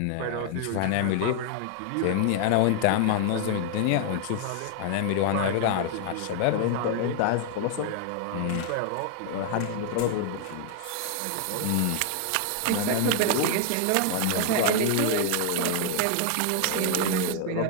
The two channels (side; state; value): both; different; correlation 0.00